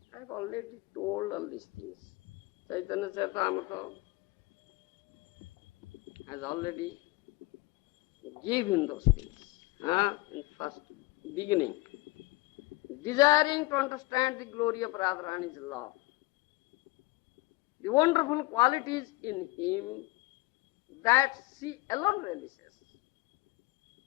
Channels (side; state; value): right; quieter; 22.5 dB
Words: I have already told all these things. Chaitanya Charitamrita has already given those things in first beginning. Desiring to understand the glory of Radharani's love, the wonderful qualities in him that she alone realizes